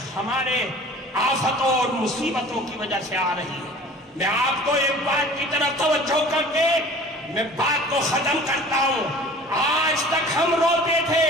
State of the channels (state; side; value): normal; both; correlation 0.45